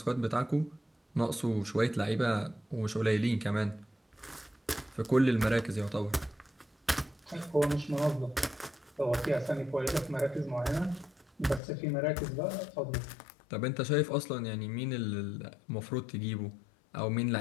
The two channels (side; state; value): right; drops out; at 11.6 s